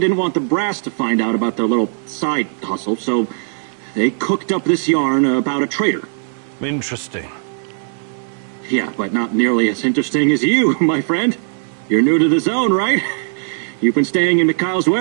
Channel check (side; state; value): left; silent; digital silence